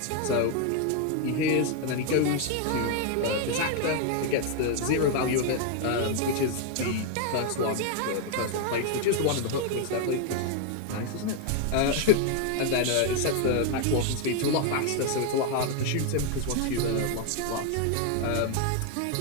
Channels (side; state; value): both; different; correlation 0.01